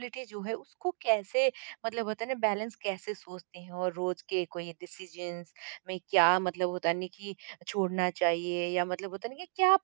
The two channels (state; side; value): silent; left; digital silence